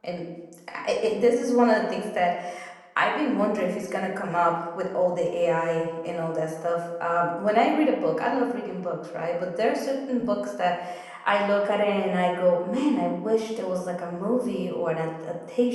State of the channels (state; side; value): identical; both; correlation 1.00